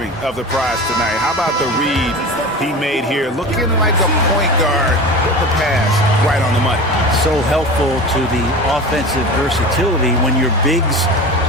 of the prize tonight. How about the read he made here? Looking like a point guard with the pass right on the money. So helpful to the offensive versatility when your bigs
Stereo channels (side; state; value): both; normal; correlation 0.32